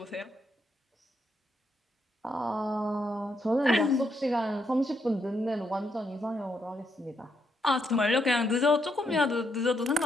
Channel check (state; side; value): normal; both; correlation 0.78